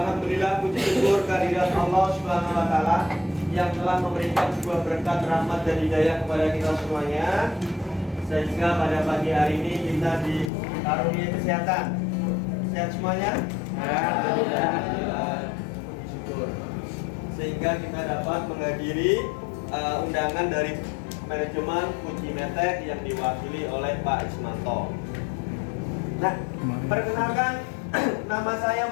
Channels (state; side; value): drops out; right; at 10.5 s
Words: puji syukur kehadirat Allah Subhanahu wa taala yang telah memberikan sebuah berkat rahmat dan hidayah kepada kita semuanya, sehingga pada pagi hari ini kita dikaruniai kesehatan. Sehat semuanya? Alhamdulillah. Puji syukur. Sehingga kita dapat menghadiri undangan dari manajemen Fuji Metek yang diwakili oleh Pak Ismanto. Nah, perkenalkan, nama saya